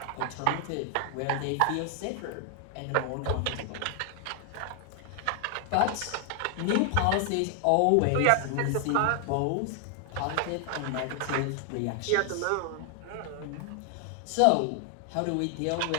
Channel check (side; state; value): both; different; correlation 0.00